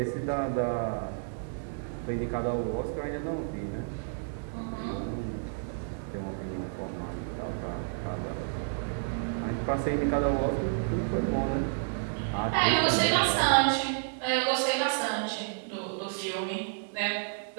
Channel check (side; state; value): left; silent; digital silence